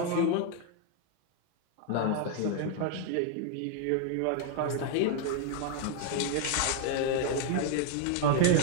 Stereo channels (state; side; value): different; both; correlation 0.00